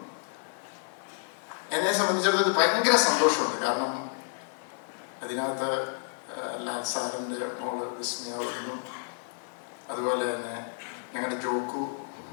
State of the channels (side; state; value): right; silent; digital silence